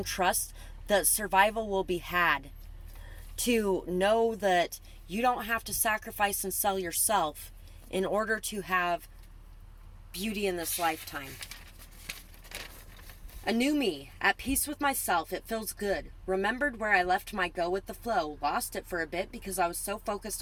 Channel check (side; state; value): both; identical; correlation 1.00